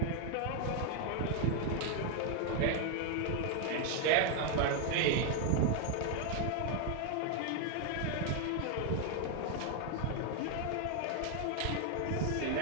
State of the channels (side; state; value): both; different; correlation 0.00